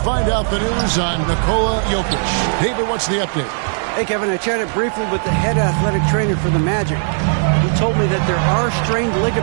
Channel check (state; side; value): silent; left; digital silence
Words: out the news on Nikola Jokic. David, what's the update? Hey, Kevin, I chatted briefly with the head athletic trainer for the Magic. He told me that there are strained